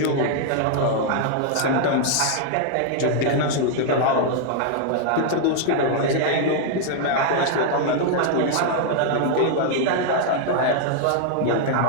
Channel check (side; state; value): both; different; correlation 0.00